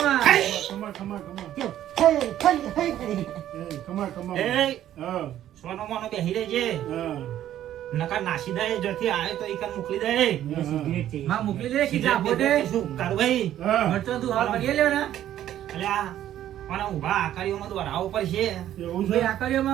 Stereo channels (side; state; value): left; quieter; 11.9 dB